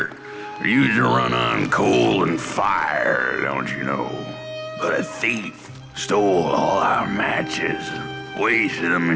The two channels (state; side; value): identical; both; correlation 1.00